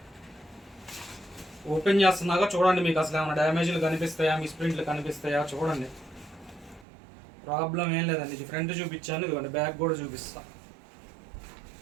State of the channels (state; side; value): drops out; left; at 6.9 s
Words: ఓపెన్ చేస్తున్నాగా చూడండి, మీకు అసలు ఏమైనా డ్యామేజ్లు కనిపిస్తాయా, మిస్ప్రింట్లు కనిపిస్తాయా చూడండి. ప్రాబ్లం ఏం లేదండి. ఇది ఫ్రంట్ చూపించాను, ఇదిగోండి బ్యాక్ కూడా చూపిస్తా.